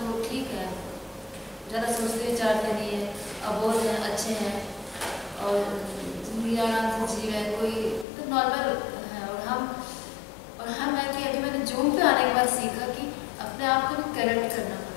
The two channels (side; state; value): right; drops out; at 8.1 s